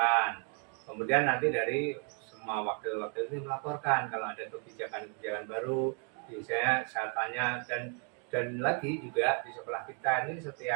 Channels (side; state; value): left; quieter; 38.7 dB